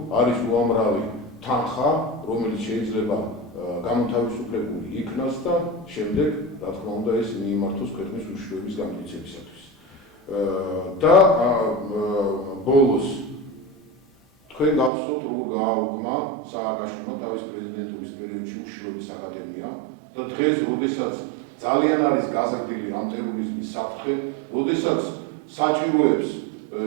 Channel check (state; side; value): drops out; left; at 14.9 s